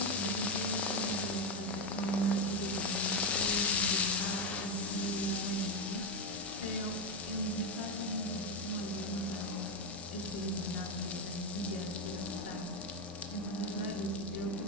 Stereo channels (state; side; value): normal; both; correlation 0.08